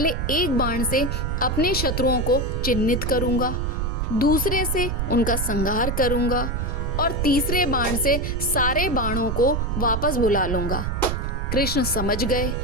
एक बाण से अपने शत्रुओं को चिन्हित करूंगा, दूसरे से उनका संहार करूंगा और तीसरे बाण से सारे बाणों को वापस बुला लूंगा। कृष्ण समझ गए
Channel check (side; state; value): right; noise; rumble, 1 dB below the sound